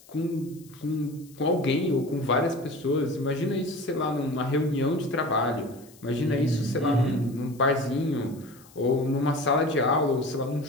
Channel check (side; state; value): left; noise; hiss, 25 dB below the sound